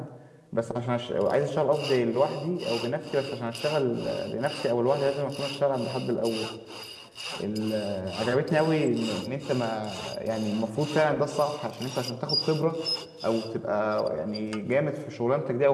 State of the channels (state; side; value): identical; both; correlation 1.00